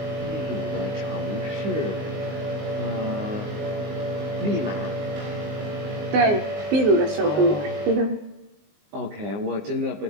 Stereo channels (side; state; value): left; late; 19 ms